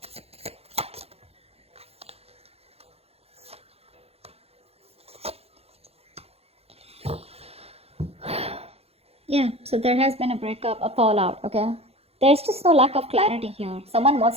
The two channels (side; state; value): left; late; 0.29 ms